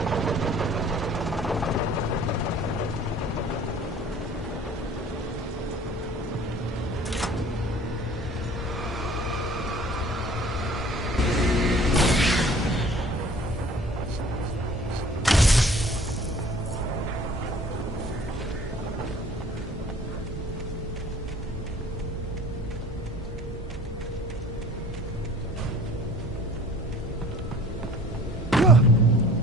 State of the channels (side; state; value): both; normal; correlation 0.50